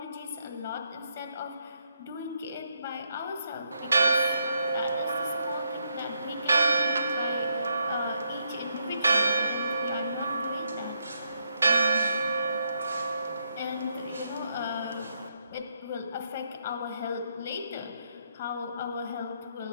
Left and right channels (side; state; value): both; inverted; correlation -0.77